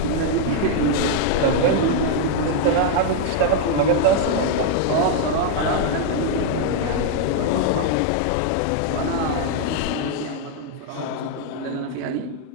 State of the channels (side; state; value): both; different; correlation 0.00